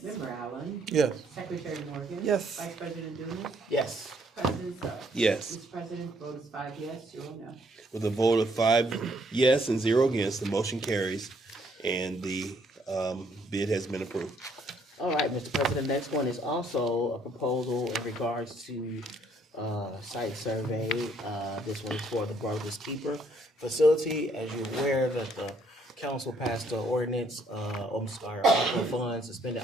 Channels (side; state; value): both; normal; correlation 0.67